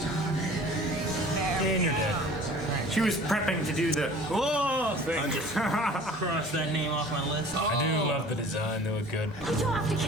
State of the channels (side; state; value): both; normal; correlation 0.46